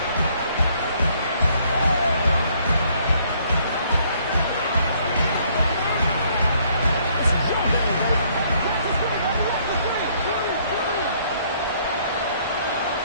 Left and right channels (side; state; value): both; inverted; correlation -0.65